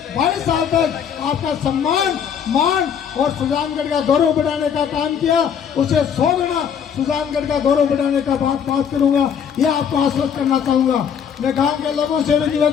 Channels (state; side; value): quieter; right; 7.8 dB